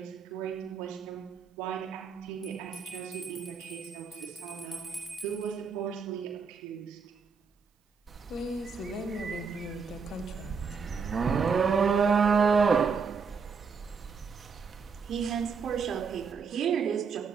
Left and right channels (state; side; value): quieter; left; 5.6 dB